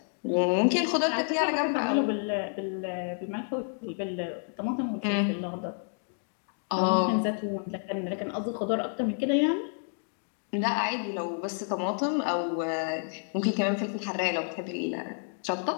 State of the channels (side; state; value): right; silent; 58 dB below the other